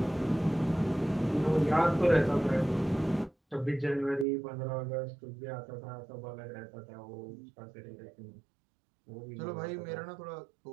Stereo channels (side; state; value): left; drops out; at 4.2 s